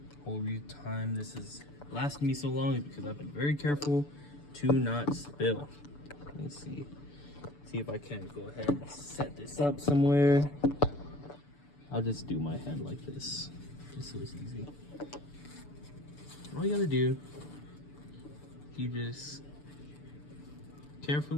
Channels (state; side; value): late; right; 6.9 ms